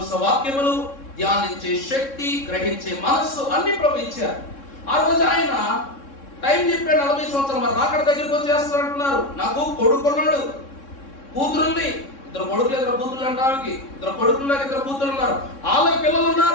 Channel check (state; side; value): late; right; 3.6 ms